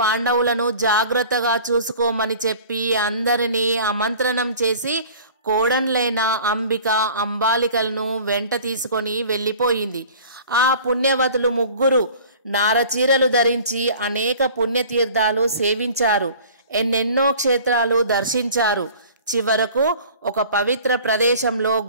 జాగ్రత్తగా చూసుకోమని చెప్పి అందరినీ ఆమంత్రణం చేసి కోడన్లైన అంబిక, అంబాలికలను వెంట తీసుకొని వెళ్ళిపోయింది. ఆ పుణ్యవతులు 3 నారచీరలు ధరించి అనేక పుణ్యతీర్థాలు సేవించారు. ఎన్నెన్నో క్షేత్రాలు దర్శించారు. చివరకు ఒక పవిత్ర ప్రదేశంలో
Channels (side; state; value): both; inverted; correlation -0.45